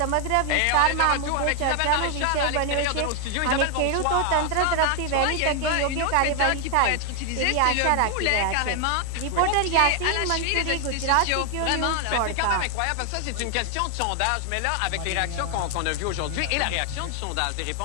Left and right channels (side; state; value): both; different; correlation 0.00